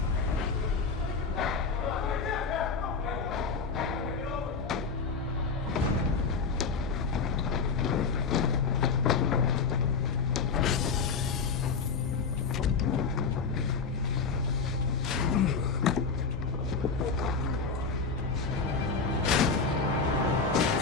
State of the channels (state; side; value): quieter; right; 5.0 dB